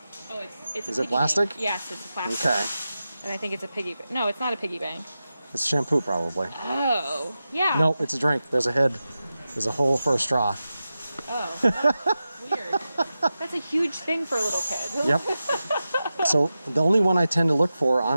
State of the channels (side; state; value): both; inverted; correlation -0.92